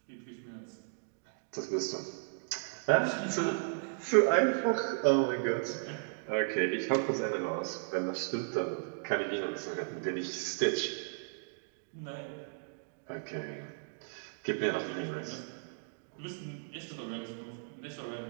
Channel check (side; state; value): left; silent; digital silence